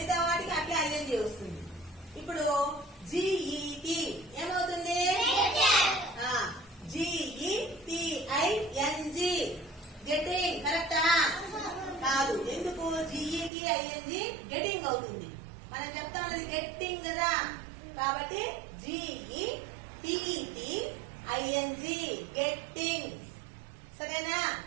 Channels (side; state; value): left; drops out; at 13.5 s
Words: వాటికి అట్లే ఐఎన్జి వస్తుంది. ఇప్పుడు GET ఏమవుతుంది? GETING getting. కరెక్టా? కాదు. ఎందుకు? GETING గెటింగ్ అవుతుంది. మనం చెప్తామది గెట్టింగ్ కదా, కాబట్టి GETTING గెట్టింగ్. సరేనా?